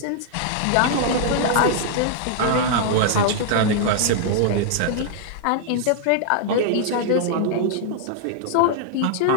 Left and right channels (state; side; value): different; both; correlation -0.01